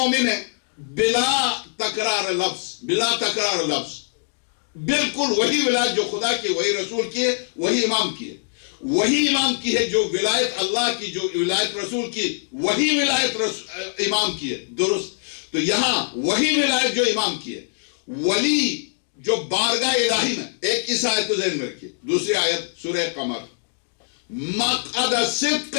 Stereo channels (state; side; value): silent; right; digital silence